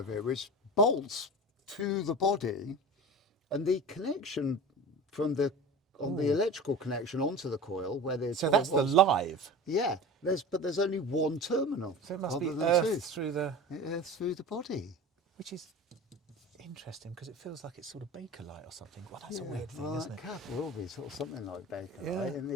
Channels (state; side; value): normal; both; correlation 0.34